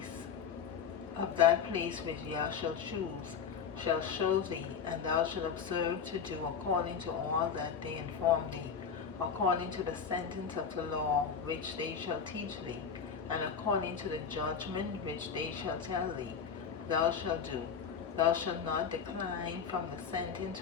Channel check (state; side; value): quieter; right; 6.7 dB